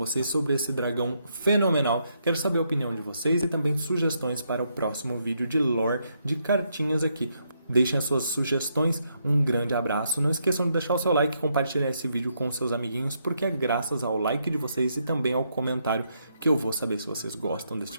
sobre esse dragão fenomenal. Quero saber a opinião de vocês e também sugestões para o próximo vídeo de lore de cartinhas aqui. Deixem as suas sugestões, um grande abraço. Não esqueçam de deixar o seu like e compartilhar esse vídeo com seus amiguinhos, porque é graças ao like de vocês e também ao comentário que eu vou saber se vocês gostam desse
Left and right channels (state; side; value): inverted; both; correlation -0.77